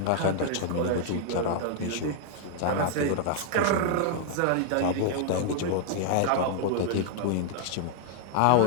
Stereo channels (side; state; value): both; different; correlation -0.01